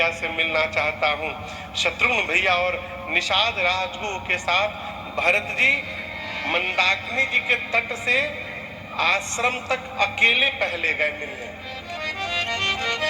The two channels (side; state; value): both; identical; correlation 1.00